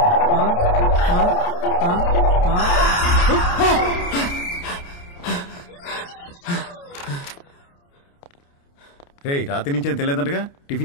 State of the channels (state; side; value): late; right; 29 ms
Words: రే రాత్రి నుంచి ఏం తెలియదంటగా,